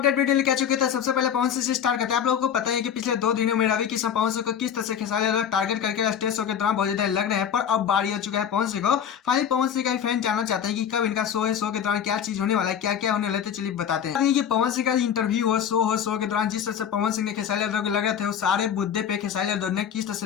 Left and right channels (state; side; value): quieter; right; 8.5 dB